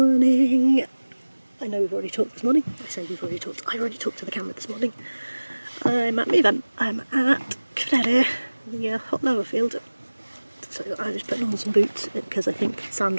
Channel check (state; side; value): inverted; both; correlation -1.00